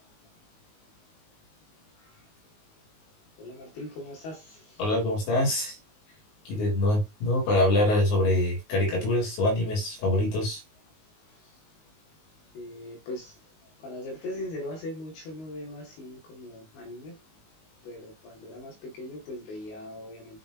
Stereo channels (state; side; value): late; right; 19 ms